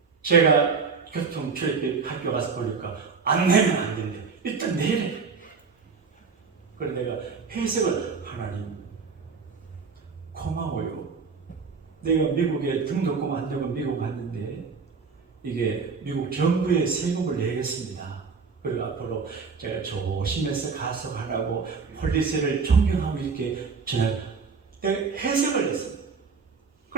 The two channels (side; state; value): left; quieter; 5.2 dB